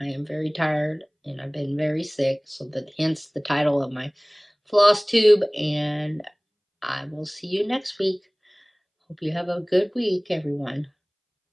I am very tired, and I've been very sick, so hence the title of my Flosstube, and I will see you next week. Hope you have a good week, everyone.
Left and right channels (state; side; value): identical; both; correlation 1.00